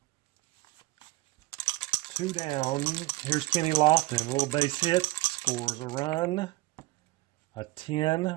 2 down. Here's Kenny Lofton. A little base hit. Scores a run. A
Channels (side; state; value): left; quieter; 20.1 dB